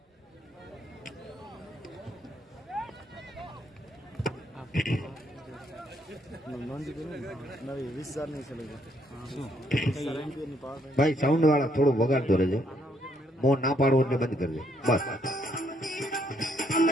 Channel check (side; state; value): both; normal; correlation 0.71